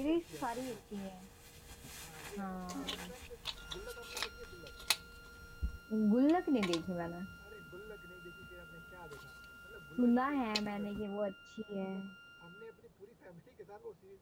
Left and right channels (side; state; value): both; identical; correlation 1.00